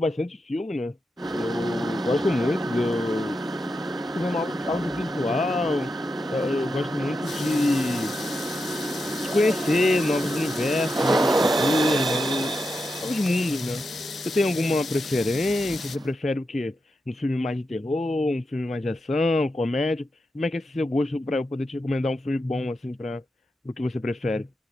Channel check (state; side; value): normal; both; correlation 0.87